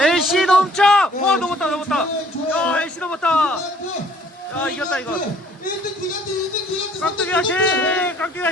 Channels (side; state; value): both; normal; correlation 0.59